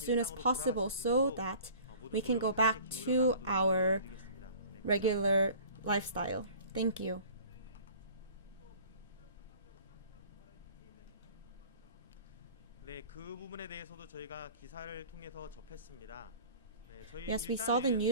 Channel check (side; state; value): both; inverted; correlation -0.46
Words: as possible so that we can go back to our regular lifestyle. Thank you. Yes, we saw the